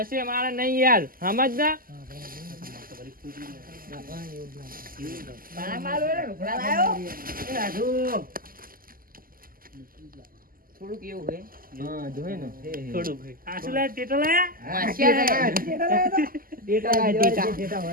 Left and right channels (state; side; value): late; left; 0.42 ms